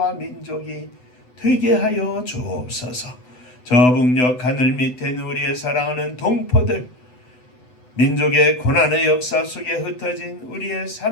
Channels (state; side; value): late; right; 8.0 ms